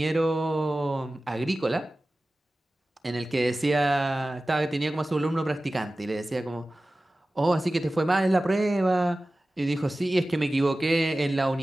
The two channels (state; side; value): normal; both; correlation 0.96